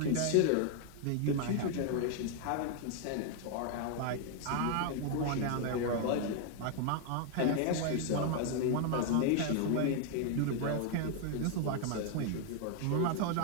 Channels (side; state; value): both; different; correlation 0.00